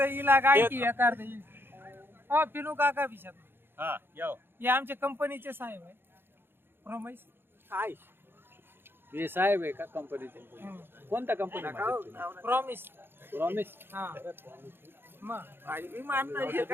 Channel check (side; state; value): left; late; 0.10 ms